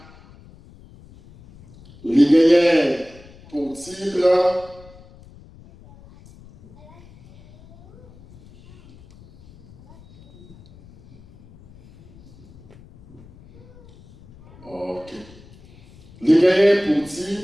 les gagnants pour titre. Ok. Les gagnants pour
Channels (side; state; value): left; noise; rumble, 24 dB below the sound